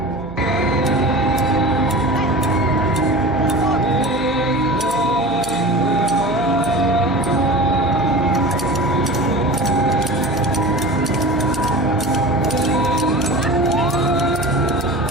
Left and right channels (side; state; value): right; noise; hum, 14 dB below the sound